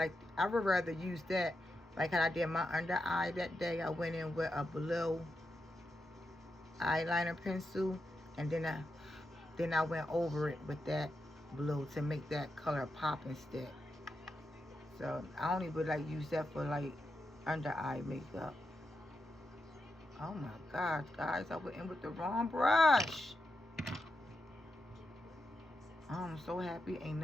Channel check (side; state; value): both; normal; correlation 0.86